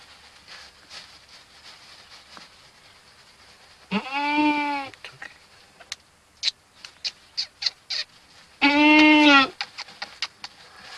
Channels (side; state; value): both; identical; correlation 1.00